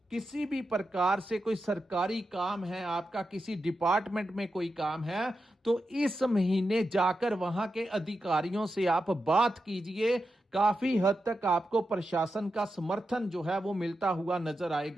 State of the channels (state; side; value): normal; both; correlation 0.89